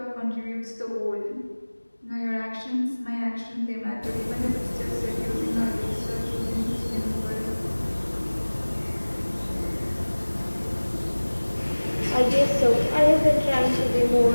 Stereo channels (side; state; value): both; inverted; correlation -1.00